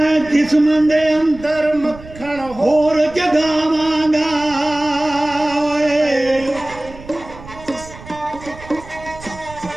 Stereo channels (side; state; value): right; noise; rumble, 17 dB below the sound